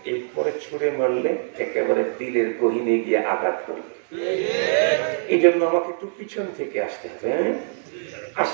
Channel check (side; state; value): left; silent; digital silence